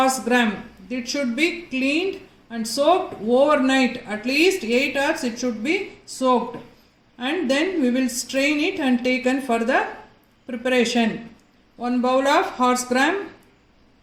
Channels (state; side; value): identical; both; correlation 1.00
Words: gram. It should be cleaned and soaked overnight. At least 8 hours it should be soaked. And then we will strain it and taken for the preparation. 1 bowl of horse gram